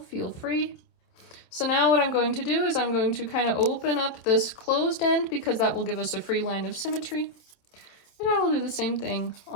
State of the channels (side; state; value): right; late; 27 ms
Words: feel free. So now what I'm going to do is I'm going to kind of open up this closed end because that will give us a free line of symmetry. And I will do the same thing